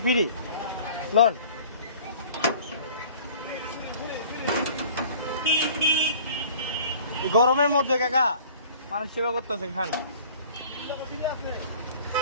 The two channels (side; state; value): both; inverted; correlation -0.48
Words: ফ্রি লন। গরমের মধ্যে কাকা মানুষ সেবা করতেছে, খান।